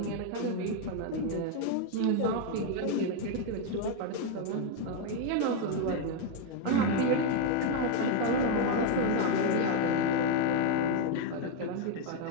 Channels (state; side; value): different; both; correlation 0.01